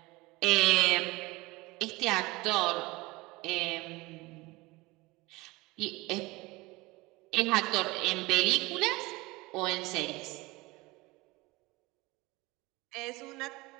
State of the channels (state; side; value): quieter; left; 22.2 dB